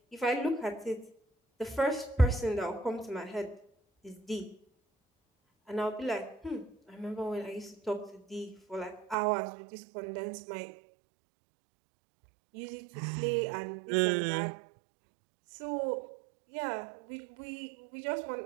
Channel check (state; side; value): drops out; left; at 9.2 s